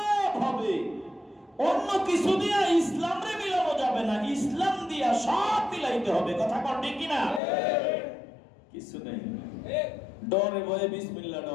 হবে, অন্য কিছু দিয়া ইসলাম রে মিলানো যাবে না। ইসলাম দিয়া সব মিলাইতে হবে। কথা কর ঠিক কিনা? কিছু নেই, ডরে ভয়ে বিসমিল্লাহ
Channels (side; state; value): right; drops out; at 7.4 s